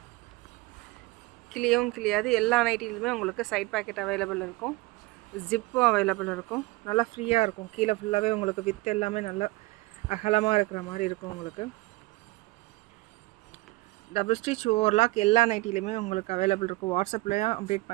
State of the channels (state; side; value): quieter; left; 21.7 dB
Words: கிளியாது. எல்லா நைட்டிலுமே உங்களுக்கு சைட் பேக்கெட் அவைலபிள் இருக்கும், ஜிப்பும் அவைலபிள் இருக்கும். நல்லா ஃப்ரீயாக இருக்கும். கீழே ஃபுல்லாகவே உங்களுக்கு வித் எல்லாமே நல்லா அகலமாக இருக்கிற மாதிரி இருக்கும். உங்களுக்கு டபுள் ஸ்டிச் ஓவர்லாக் எல்லா நைட்டிலுமே உங்களுக்கு அவைலபிள் இருக்கும். வாட்ஸ்அப்லேயும் அப்டேட்